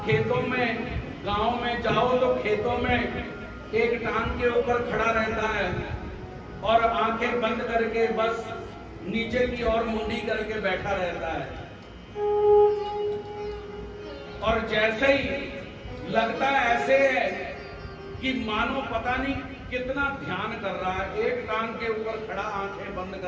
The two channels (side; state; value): both; identical; correlation 1.00